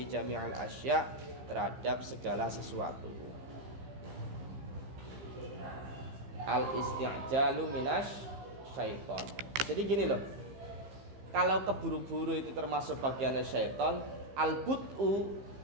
jami'al asya terhadap segala sesuatu. Al isti'jalu minas syaiton. Jadi gini loh, kalau keburu-buru itu termasuk bagiannya syaiton. Al but'u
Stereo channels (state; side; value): late; left; 15 ms